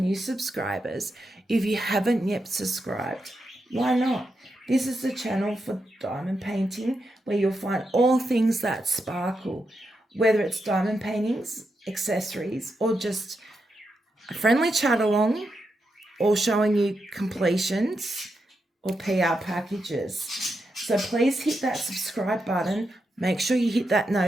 subscribers. If you haven't yet subscribed, why not? This is the channel for diamond painting where you'll find all things that sparkle, whether it's diamond paintings, accessories, or just a friendly chat along, or showing you completions or PR packages. So please hit that subscribe button, make sure you hit that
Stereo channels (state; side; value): normal; both; correlation 0.85